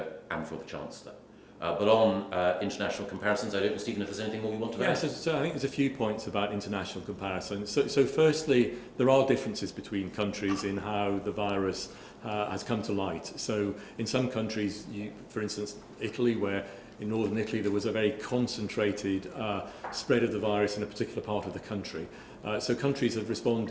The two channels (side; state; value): both; identical; correlation 1.00